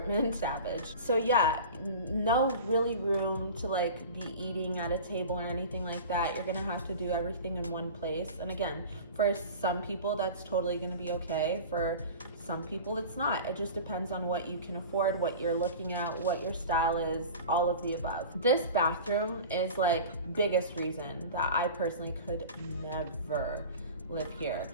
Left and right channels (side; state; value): both; inverted; correlation -0.35